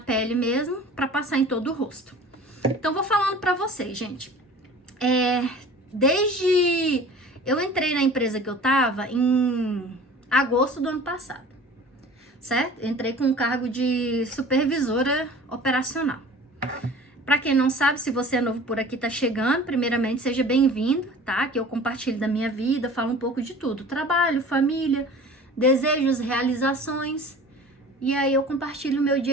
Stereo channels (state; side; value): normal; both; correlation 0.43